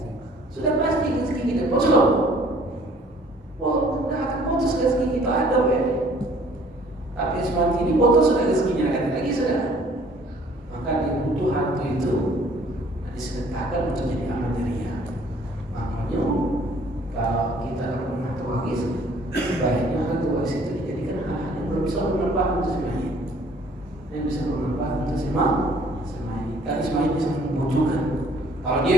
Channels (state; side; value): normal; both; correlation 0.57